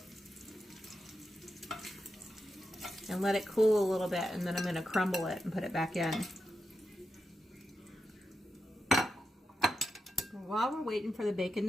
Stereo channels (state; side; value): normal; both; correlation 0.87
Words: And let it cool a little bit, and then I'm going to crumble it and put it back in. While we're waiting for the bacon